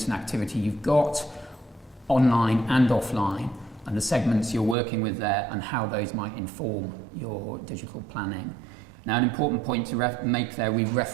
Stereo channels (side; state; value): left; drops out; at 4.8 s